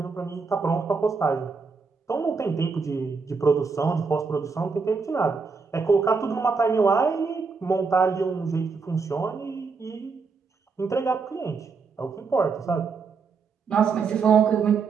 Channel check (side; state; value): left; quieter; 4.9 dB